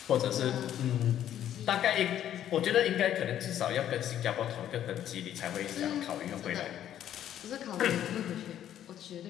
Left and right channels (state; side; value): quieter; right; 10.9 dB